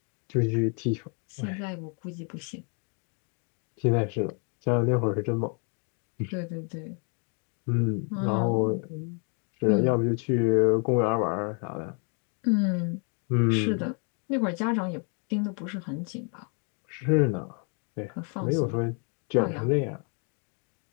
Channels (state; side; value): quieter; right; 39.5 dB